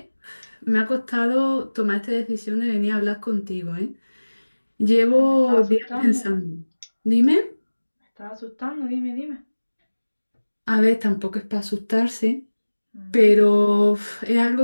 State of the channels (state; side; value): inverted; both; correlation -1.00